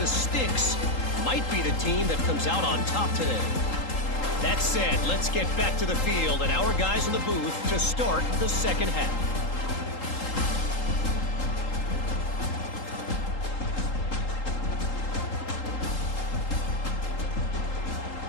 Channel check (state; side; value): late; right; 3.8 ms